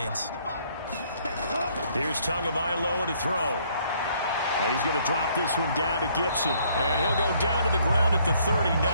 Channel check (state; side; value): inverted; both; correlation -0.65